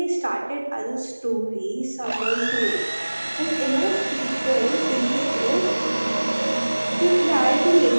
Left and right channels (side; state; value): both; inverted; correlation -1.00